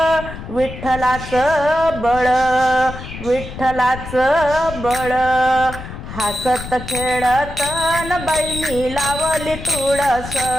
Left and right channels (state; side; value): noise; left; rumble, 11 dB below the sound